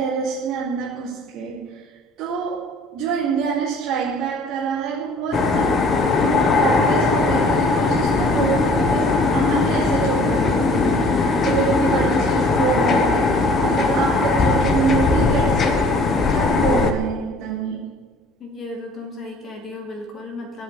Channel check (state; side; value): normal; both; correlation 0.52